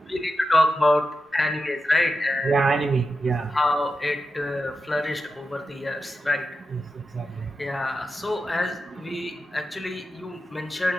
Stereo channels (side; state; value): both; normal; correlation 0.90